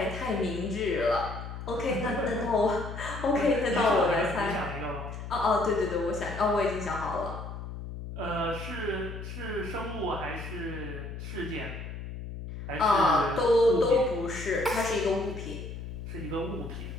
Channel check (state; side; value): noise; left; hum, 9 dB below the sound